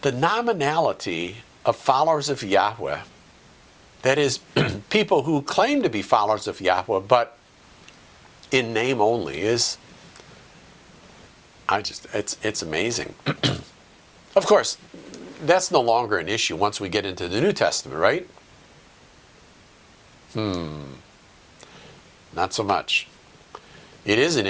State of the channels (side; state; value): both; identical; correlation 1.00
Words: The nominality of followers of Yahweh, that is, people who claim to be followers of Yahweh, but in name only, is, it's amazing. Of course, that's no longer an issue once we get into the New Testament, right? Not so much. It is an